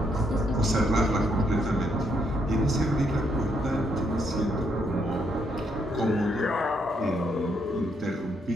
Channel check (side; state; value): both; normal; correlation 0.75